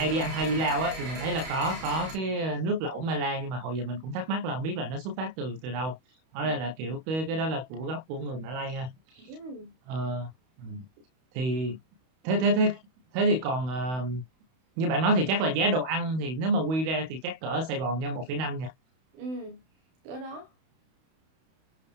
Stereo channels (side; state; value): left; late; 31 ms